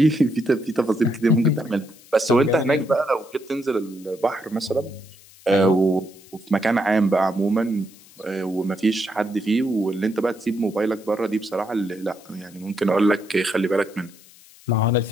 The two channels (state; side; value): noise; left; hiss, 24 dB below the sound